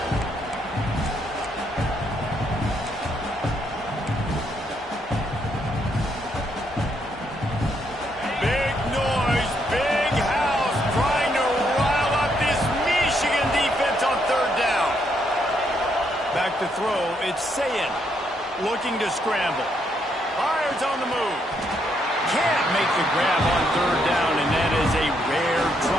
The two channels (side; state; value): both; normal; correlation 0.75